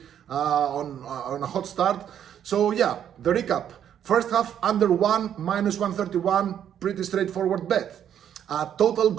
on a hot start. So yeah, the recap: first half under 1, -131, pretty straightforward bet. Total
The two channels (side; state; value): left; quieter; 9.6 dB